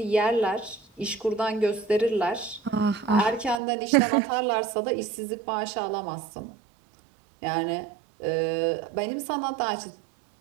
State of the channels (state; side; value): drops out; left; at 3.6 s